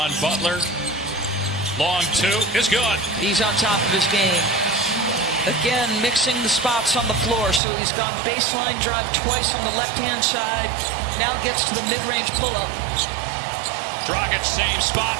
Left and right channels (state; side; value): drops out; left; at 7.6 s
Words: Butler. Long 2 is good. He's on top of his game. Again, mixing the spots on the floor. So he's gone baseline drive twice on the left-hand side. Now gets to the mid-range pull-up. Dragic, same